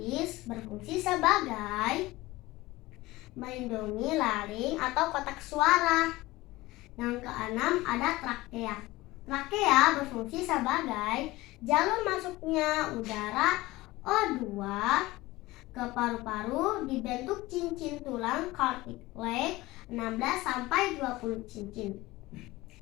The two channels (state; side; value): quieter; right; 19.4 dB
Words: berfungsi sebagai melindungi laring atau kotak suara. Yang keenam ada trakea. Trakea berfungsi sebagai jalur masuknya udara O2 ke paru-paru dibentuk cincin tulang cartilage 16-20 cincin.